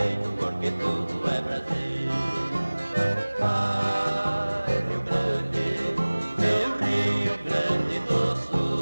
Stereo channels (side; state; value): both; inverted; correlation -1.00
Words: porque tudo é Brasil. Ai, Rio Grande, meu Rio Grande do